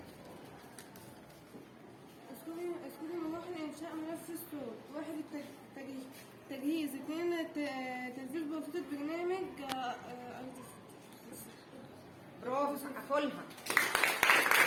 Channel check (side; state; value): both; identical; correlation 1.00